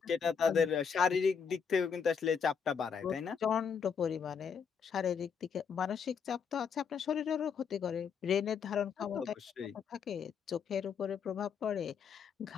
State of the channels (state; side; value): quieter; right; 6.5 dB